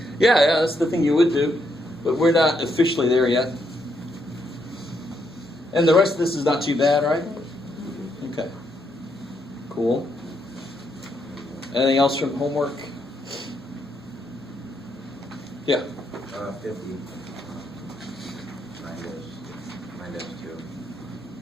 yeah, that's the thing you would do. But we're not officially there yet. And the rest of this is not too bad, right? Okay. Cool. Anything else from homework? Yeah. 50 minus 2.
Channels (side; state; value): both; normal; correlation 0.77